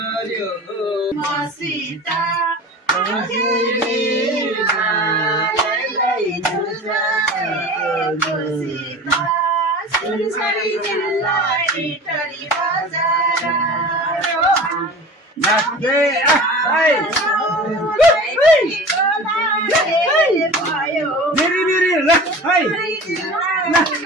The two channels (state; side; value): normal; both; correlation 0.37